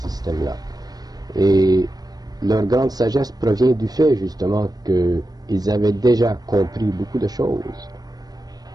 Et leur grande sagesse provient du fait justement qu'ils avaient déjà compris beaucoup de choses.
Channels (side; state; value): left; late; 0.19 ms